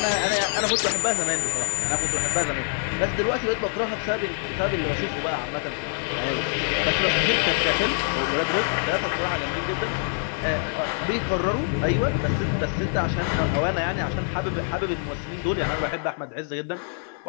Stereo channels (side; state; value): right; silent; digital silence